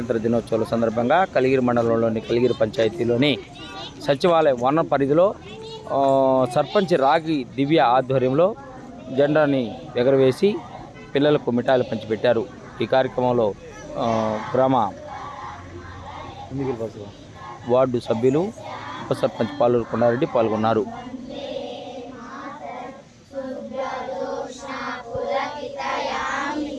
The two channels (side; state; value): both; identical; correlation 1.00